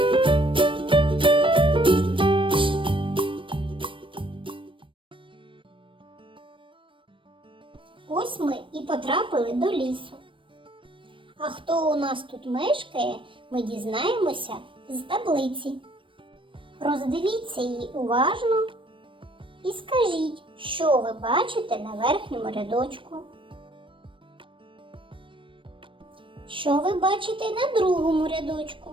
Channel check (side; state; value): left; late; 0.25 ms